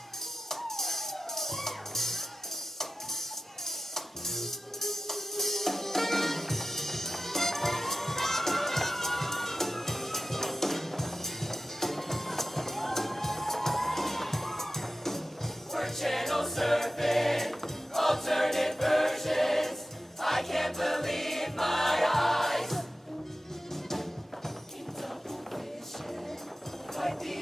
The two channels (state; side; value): normal; both; correlation 0.93